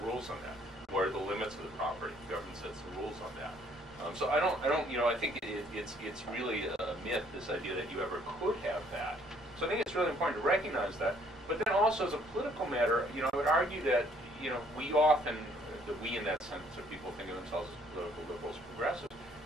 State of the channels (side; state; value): both; normal; correlation 0.63